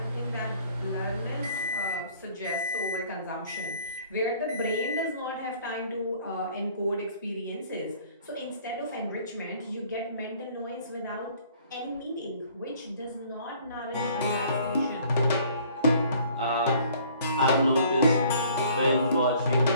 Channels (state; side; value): inverted; both; correlation -0.56